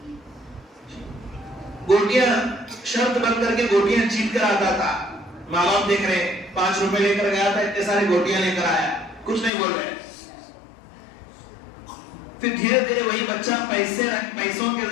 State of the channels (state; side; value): drops out; right; at 9.5 s